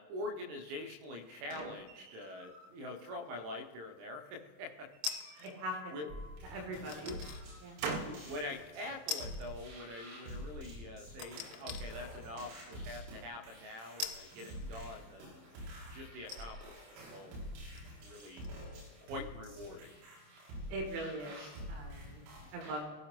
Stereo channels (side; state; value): left; late; 26 ms